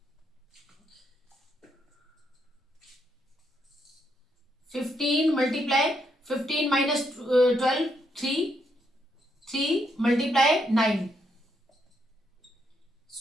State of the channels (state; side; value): normal; both; correlation 0.77